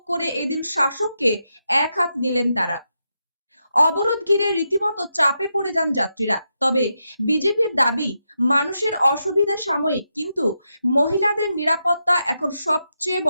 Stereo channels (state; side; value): inverted; both; correlation -0.85